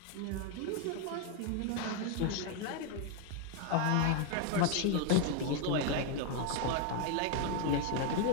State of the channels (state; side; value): different; both; correlation 0.01